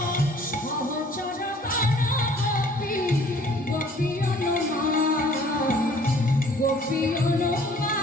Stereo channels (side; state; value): both; normal; correlation 0.55